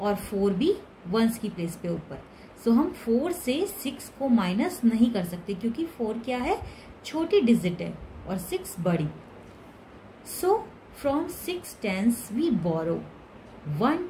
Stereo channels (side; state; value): both; identical; correlation 1.00